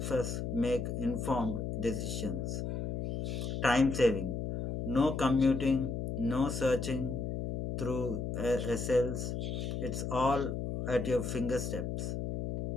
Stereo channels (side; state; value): left; noise; hum, 3 dB below the sound